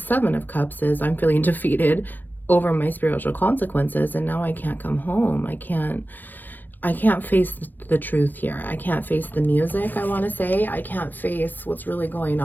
of Cups is, I'm feeling defeated over my spiritual consequences, and now I can't come home. I can't face the truth here. I can't face the music, I want to say. I can't face what's really going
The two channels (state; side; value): late; right; 0.087 ms